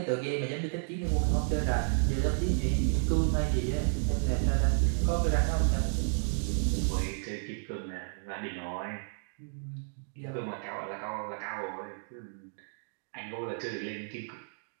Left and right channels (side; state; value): left; silent; digital silence